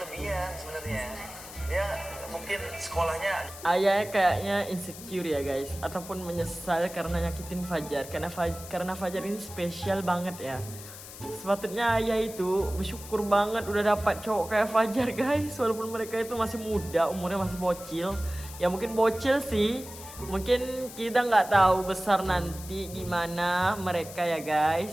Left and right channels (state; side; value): noise; left; hiss, 14 dB below the sound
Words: sebenarnya. Dia mungkin sekolahnya Ayahnya kayaknya insecure ya guys, ataupun menyesal karena nyakitin Fajar. Karena Fajar ini spesial banget ya. Sepatutnya ayah itu bersyukur banget udah dapat cowok kayak Fajar guys. Walaupun mereka itu masih muda, umurnya masih bocil. Ya mungkin bocil sih. Mungkin kita nggak tahu besar nanti gimana mereka ya